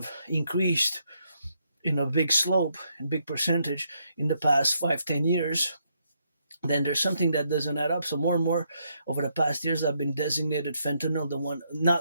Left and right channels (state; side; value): inverted; both; correlation -0.76